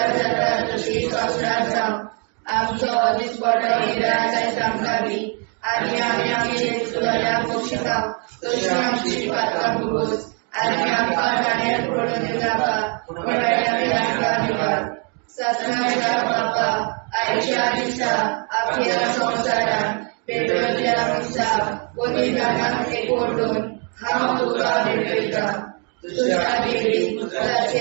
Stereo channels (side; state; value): left; quieter; 37.9 dB